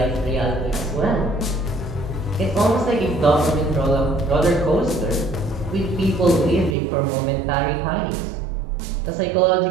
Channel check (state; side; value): drops out; left; at 6.8 s